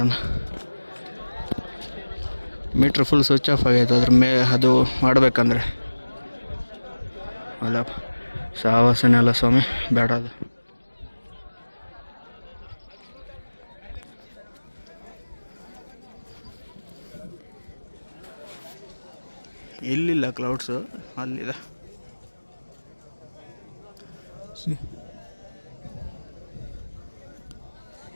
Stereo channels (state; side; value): inverted; both; correlation -1.00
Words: ಮೀಟ್ರ್ ಫುಲ್ ಸ್ವಿಚ್ ಆಫ್ ಆಗೈತೆ ಅದ್ರ ಅದು ಮಾಡಬೇಕಂದ್ರೆ. ಅಲ್ಲ ಸಾಹಸನೇ ಅಲ್ಲ ಸ್ವಾಮಿ, ಬೇಡ ಅದು. ಇಲ್ಲಿಲ್ಲ ಕ್ಲೌಡ್ಸು, ಅಲ್ಲಿದೆ.